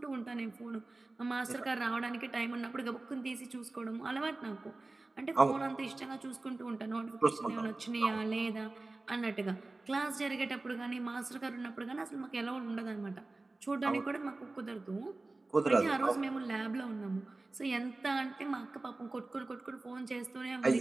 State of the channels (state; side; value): quieter; left; 3.2 dB